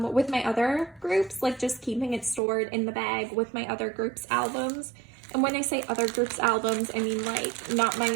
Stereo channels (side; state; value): left; drops out; at 2.4 s